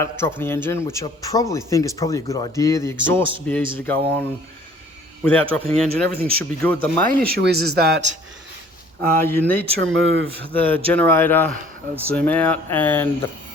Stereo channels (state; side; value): normal; both; correlation 0.54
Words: dropping the engine, which I probably think is probably a good idea. The exhaust would be easy to go on without dropping the engine. Everything should be good. The main issue is that you need to remove the generator, zoom out, and the